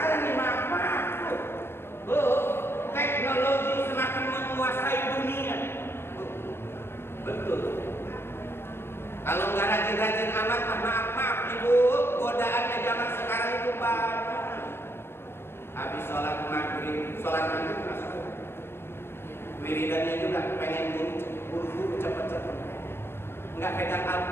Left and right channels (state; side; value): late; right; 0.12 ms